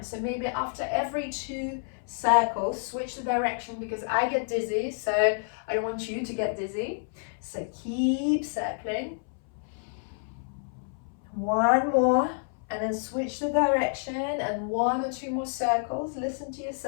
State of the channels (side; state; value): right; silent; 59 dB below the other